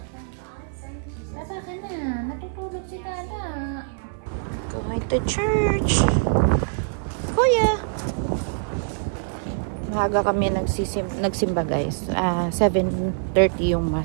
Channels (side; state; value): left; silent; 61 dB below the other